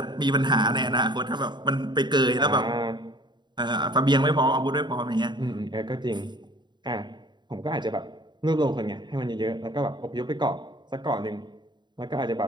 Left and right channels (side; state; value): left; late; 0.22 ms